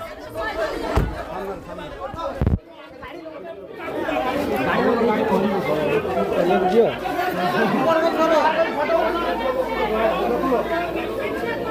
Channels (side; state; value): both; identical; correlation 1.00